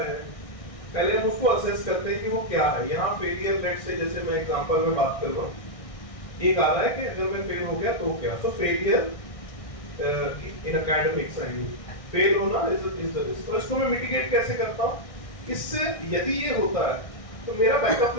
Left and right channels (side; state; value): right; late; 1.6 ms